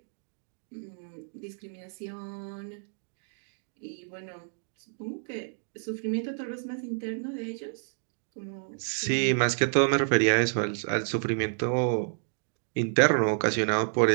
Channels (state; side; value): silent; left; digital silence